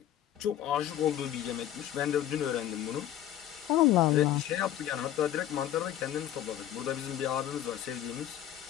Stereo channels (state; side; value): quieter; right; 11.8 dB